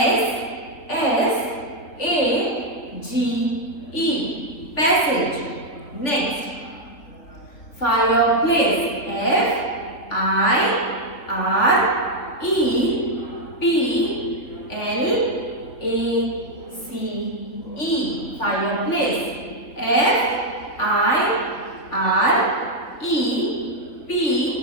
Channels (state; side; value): late; right; 3.7 ms